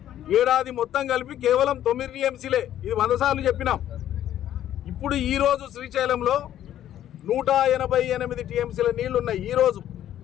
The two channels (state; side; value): quieter; right; 11.6 dB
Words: ఏడాది మొత్తం కలిపి కేవలం 9 టీఎంసీలే. ఇది 100 సార్లు చెప్పినాం. ఇప్పుడు ఈరోజు శ్రీశైలంలో 188 టీఎంసీల నీళ్లు ఉన్నాయి. ఈరోజు